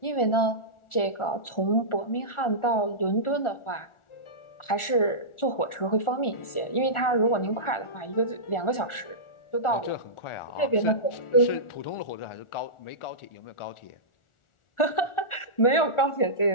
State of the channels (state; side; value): late; right; 1.4 ms